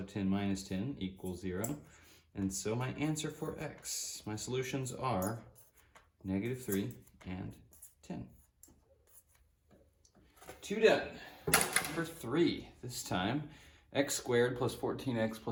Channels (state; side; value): identical; both; correlation 1.00